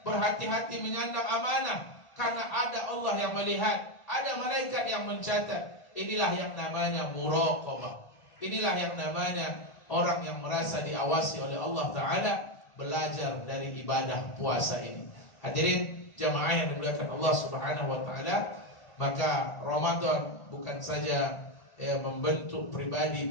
berhati-hati menyandang amanah, karena ada Allah yang melihat, ada malaikat yang mencatat. Inilah yang namanya muraqabah. Inilah yang namanya orang yang merasa diawasi oleh Allah Ta'ala, belajar dari ibadah puasa ini. Hadirin jamaah yang dimuliakan Allah Subhanahu Wa Ta'ala, maka Ramadan bukan saja membentuk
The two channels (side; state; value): right; late; 1.4 ms